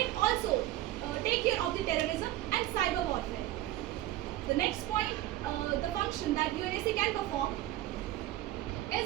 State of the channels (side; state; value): left; quieter; 14.8 dB